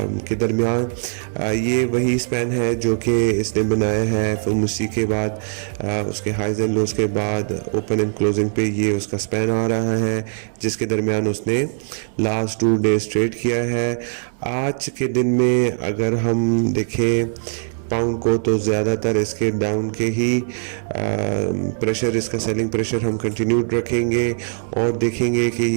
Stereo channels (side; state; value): left; silent; 65 dB below the other